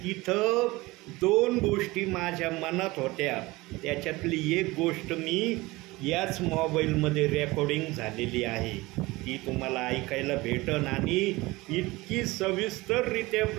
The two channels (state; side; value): quieter; left; 21.2 dB